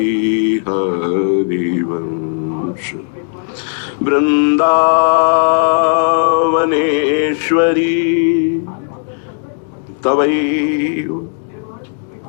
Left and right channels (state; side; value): silent; right; 67 dB below the other